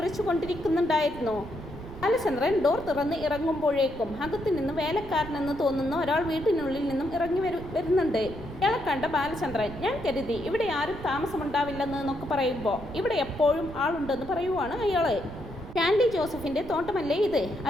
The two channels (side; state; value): right; noise; rumble, 13 dB below the sound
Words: ബാലചന്ദ്രൻ ഡോർ തുറന്ന് ഇറങ്ങുമ്പോഴേക്കും അകത്തു നിന്ന് വേലക്കാരനെന്ന് തോന്നുന്ന ഒരാൾ വീട്ടിനുള്ളിൽ നിന്നും ഇറങ്ങി വരുന്നുണ്ട്. ഇയാളെ കണ്ട ബാലചന്ദ്രൻ, ഞാൻ കരുതി ഇവിടെ ആരും താമസമുണ്ടാവില്ലെന്നൊക്കെ പറയുമ്പോൾ ഇവിടെ എപ്പോഴും ആളുണ്ടെന്ന് പറയുവാണ് അയാള്. സ്റ്റാൻലി ജോസഫിൻ്റെ തോട്ടമല്ലേ ഇത്?